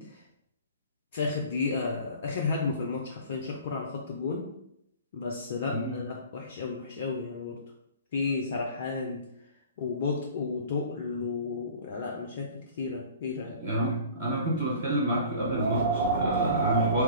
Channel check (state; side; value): inverted; both; correlation -0.44